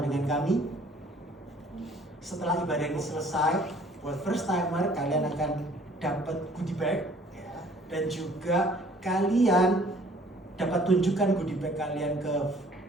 kami, setelah ibadah ini selesai, buat first timer kalian akan dapat goodie bag ya, dan juga kalian dapat tunjukkan goodie bag kalian ke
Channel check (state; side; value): normal; both; correlation 0.56